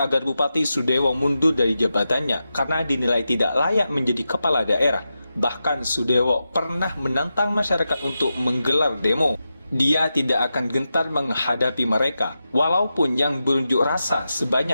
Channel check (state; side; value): inverted; both; correlation -0.90